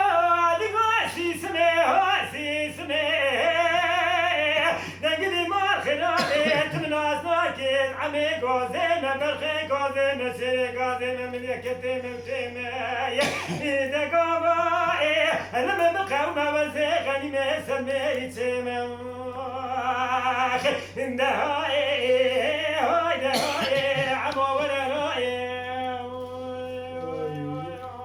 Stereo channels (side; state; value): both; identical; correlation 1.00